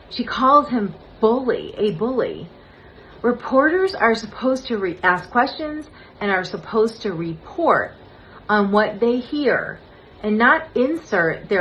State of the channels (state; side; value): identical; both; correlation 1.00